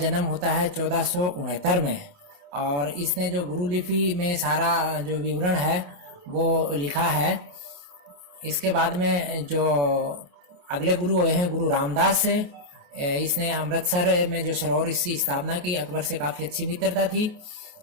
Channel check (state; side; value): late; left; 28 ms